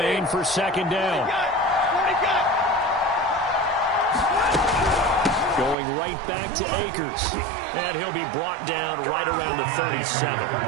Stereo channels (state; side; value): drops out; left; at 5.8 s